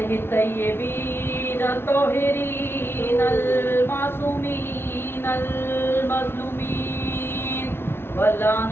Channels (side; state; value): right; late; 0.11 ms